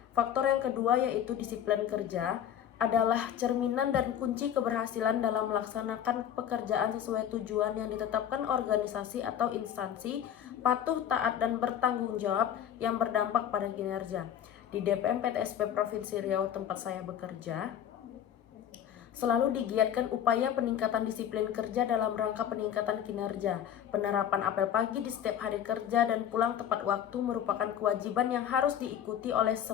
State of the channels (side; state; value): right; quieter; 9.8 dB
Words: Faktor yang kedua yaitu disiplin kerja adalah cerminan dan kunci keberhasilan dalam melaksanakan pekerjaan sesuai tujuan yang ditetapkan organisasi atau instansi, patuh, taat, dan bertanggung jawab yang berdampak pada kinerja. Di DPM PTSP Provinsi Riau tempat saya bekerja, selalu digiatkan upaya peningkatan disiplin kerja dalam rangka peningkatan kinerja. Penerapan apel pagi di setiap hari kerja dan pulang tepat waktu merupakan kewajiban yang harus diikuti oleh